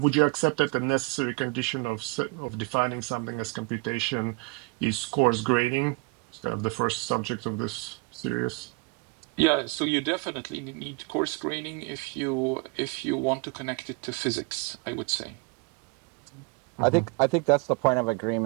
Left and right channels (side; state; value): left; quieter; 29.5 dB